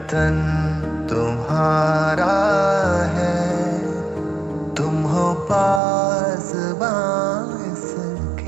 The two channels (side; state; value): left; drops out; at 5.8 s